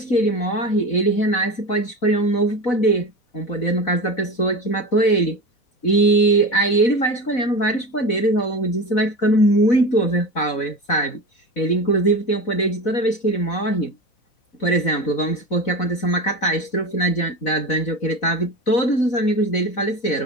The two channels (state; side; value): late; right; 4.0 ms